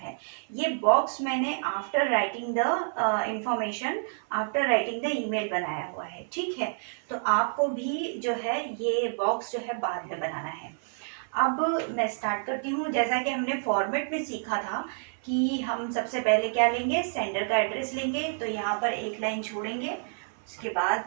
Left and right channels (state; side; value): silent; left; 55 dB below the other